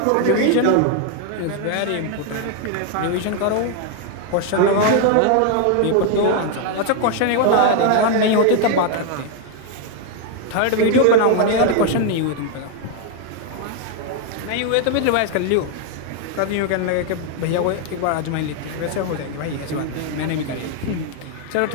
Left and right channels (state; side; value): different; both; correlation 0.01